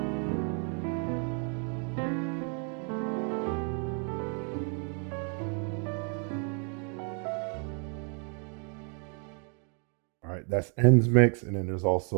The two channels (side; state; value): left; quieter; 39.5 dB